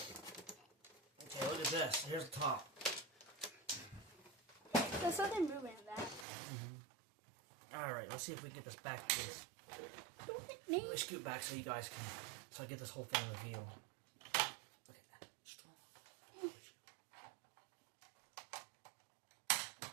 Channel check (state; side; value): drops out; left; at 6.2 s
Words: Okay, look at this. Here's the top. There's something moving in that. Alright, let's see if we can get this back, please. Don't hit me. Let me scoot back so you guys can... So I get this whole thing in the view. Look at that. Strong.